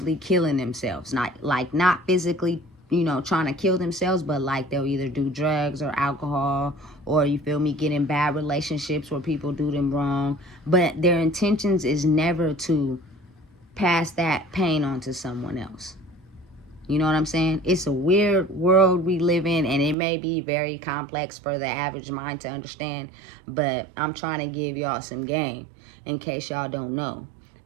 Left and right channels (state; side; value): drops out; left; at 20.0 s